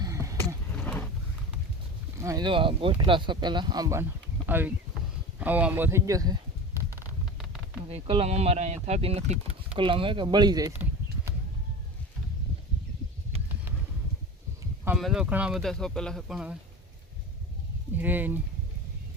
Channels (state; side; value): normal; both; correlation 0.31